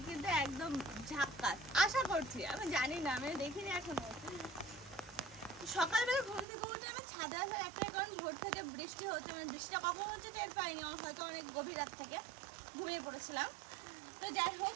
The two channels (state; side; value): drops out; left; at 6.5 s